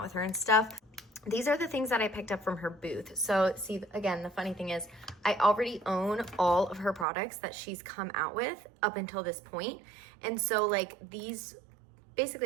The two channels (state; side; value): drops out; left; at 7.1 s